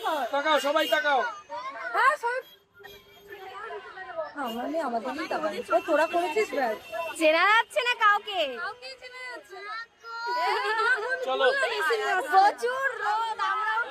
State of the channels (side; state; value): both; identical; correlation 1.00